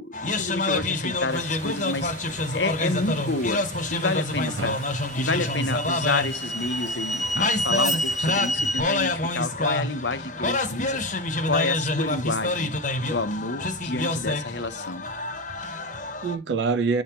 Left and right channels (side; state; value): both; normal; correlation 0.18